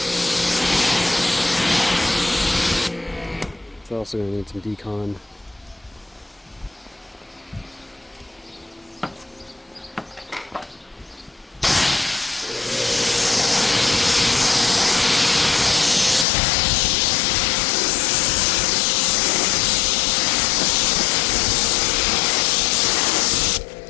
It's also going to need some decon.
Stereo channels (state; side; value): drops out; right; at 16.2 s